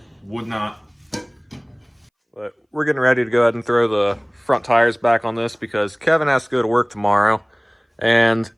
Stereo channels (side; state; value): both; identical; correlation 1.00